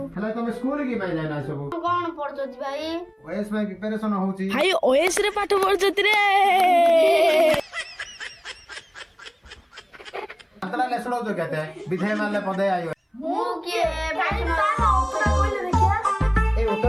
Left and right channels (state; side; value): identical; both; correlation 1.00